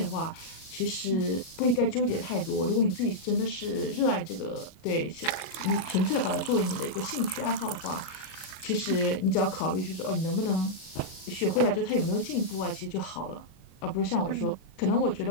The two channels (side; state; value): right; late; 37 ms